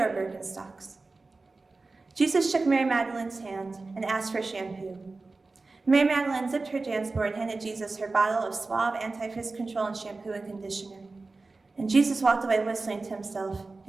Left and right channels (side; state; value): left; quieter; 3.6 dB